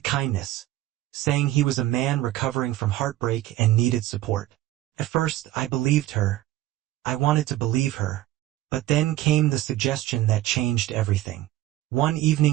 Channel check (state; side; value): quieter; left; 15.4 dB